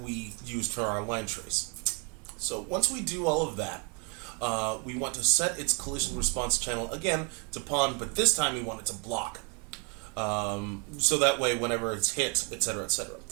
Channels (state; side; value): quieter; left; 35.0 dB